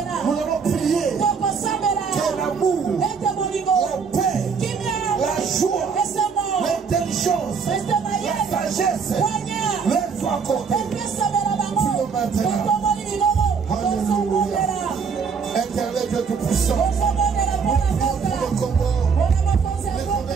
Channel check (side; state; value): left; quieter; 5.7 dB